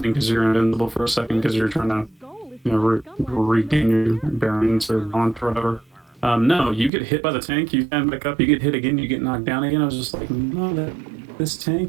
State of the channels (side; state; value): left; drops out; at 6.9 s